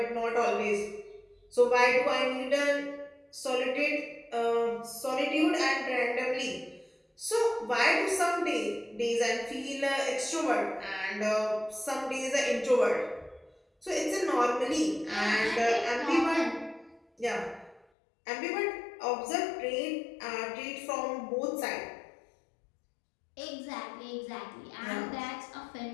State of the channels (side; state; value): right; drops out; at 17.9 s